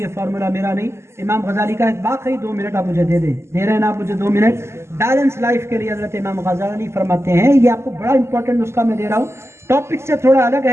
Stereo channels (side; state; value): left; late; 0.13 ms